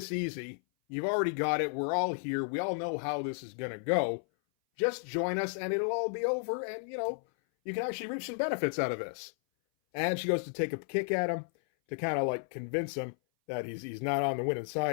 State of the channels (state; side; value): silent; right; 56 dB below the other